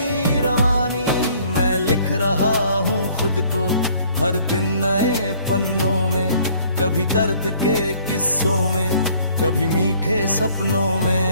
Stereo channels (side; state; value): both; inverted; correlation -0.58